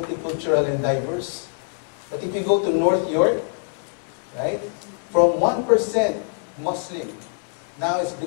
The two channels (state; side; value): silent; right; 57 dB below the other